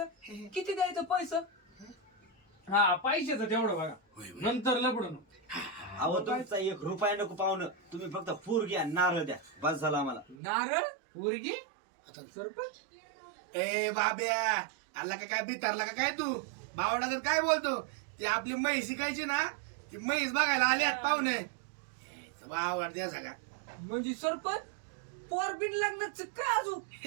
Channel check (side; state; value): left; drops out; at 10.4 s